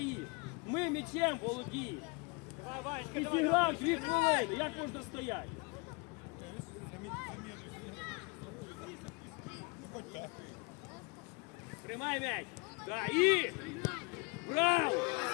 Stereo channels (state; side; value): quieter; right; 29.6 dB